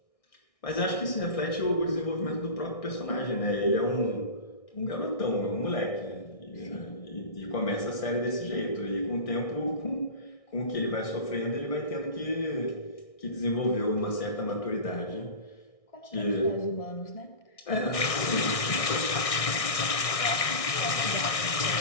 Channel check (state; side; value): late; right; 1.6 ms